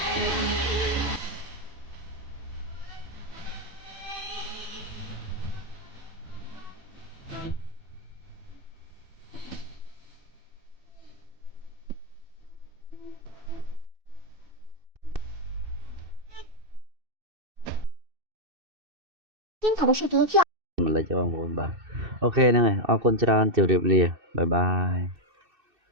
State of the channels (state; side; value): late; left; 2.6 ms